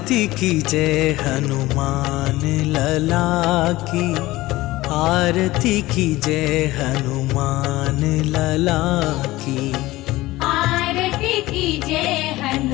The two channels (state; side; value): quieter; right; 18.3 dB